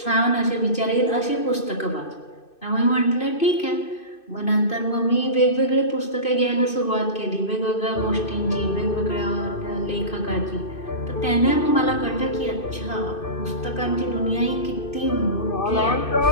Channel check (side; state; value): right; late; 2.6 ms